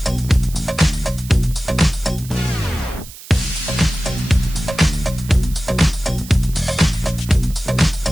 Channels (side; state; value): right; noise; hiss, 17 dB below the sound